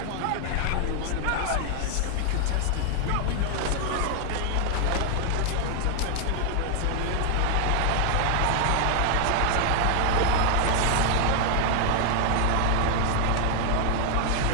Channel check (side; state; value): both; different; correlation 0.00